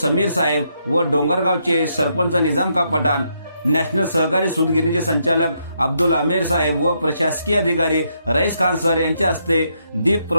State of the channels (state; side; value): inverted; both; correlation -0.77